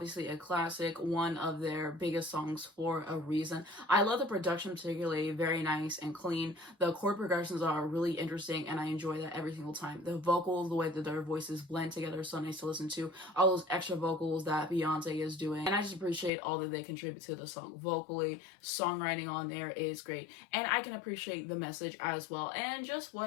a classic, one of their biggest songs for a reason. I love the production particularly, very nice and clean. The chord progressions are really interesting and I enjoy that every single time. The vocals, the way that their voices blend together is so nice to listen to. All those extra vocals that Beyonce is doing. And I just appreciate all that they contribute to the song vocally. Songwriting on there is great. And I can appreciate the message as well. And just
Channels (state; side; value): drops out; right; at 16.3 s